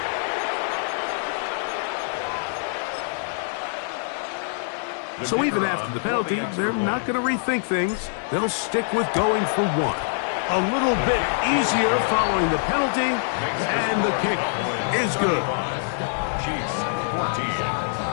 So even after the penalty, they're not going to rethink things. They'll stick with going for one. A little bit easier following the penalty, and the kick is good. Chiefs 14.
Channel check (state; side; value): silent; right; digital silence